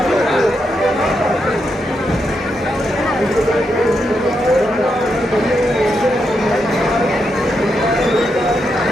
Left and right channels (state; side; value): normal; both; correlation 0.83